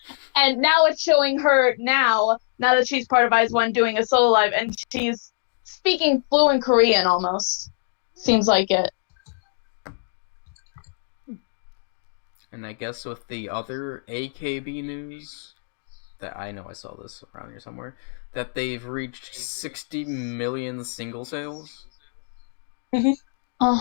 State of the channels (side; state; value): right; silent; digital silence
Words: And now it's showing her now that she's part of IZ*ONE doing a solo live, and she's speaking fluent Korean almost. Seems like it. And I guess with the other AKB news, that I know I saw this around here somewhere, that they've reached 60 million single sales.